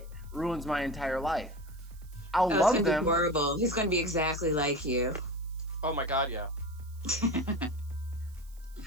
ruins my entire life. I'll Oh, love it's gonna them. be horrible. He's gonna be exactly like you. Oh my god, yeah.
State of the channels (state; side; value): noise; right; hiss, 27 dB below the sound